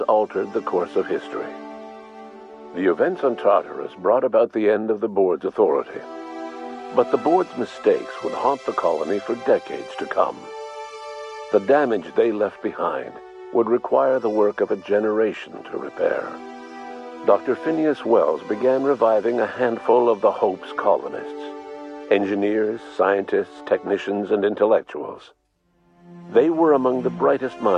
altered the course of history. The events on Tartarus brought about the end of the board's authority. But the board's mistakes would haunt the colony for decades to come. The damage they left behind would require the work of a generation to repair. Dr. Phineas Wells began reviving a handful of the Hope's colonists. Engineers, scientists, technicians, and intellectuals. They were among the brightest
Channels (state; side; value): identical; both; correlation 1.00